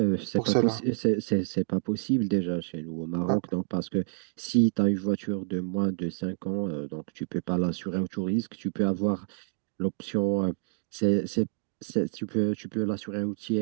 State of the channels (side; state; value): left; silent; digital silence